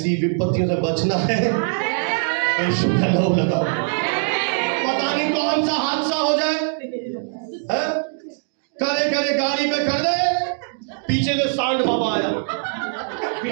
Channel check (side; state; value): left; silent; 64 dB below the other